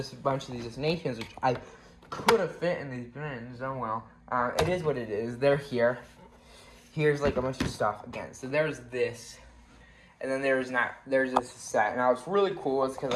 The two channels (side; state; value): both; identical; correlation 1.00